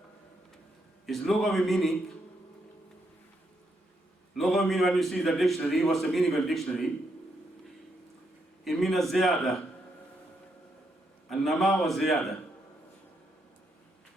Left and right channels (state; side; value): normal; both; correlation 0.79